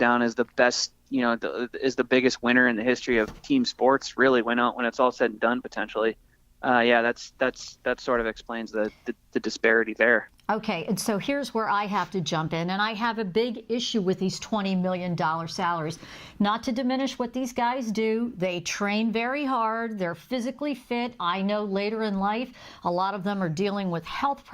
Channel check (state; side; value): identical; both; correlation 1.00